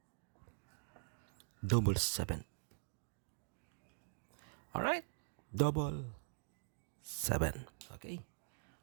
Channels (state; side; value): silent; left; digital silence